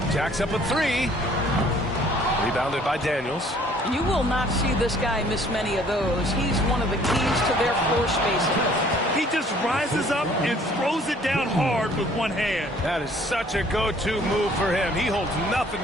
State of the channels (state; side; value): normal; both; correlation 0.57